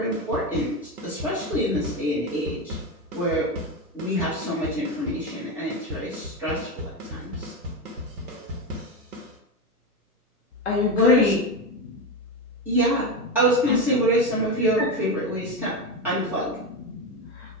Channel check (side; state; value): both; normal; correlation 0.15